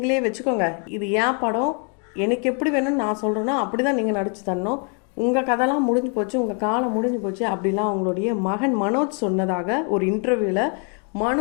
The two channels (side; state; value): right; quieter; 38.8 dB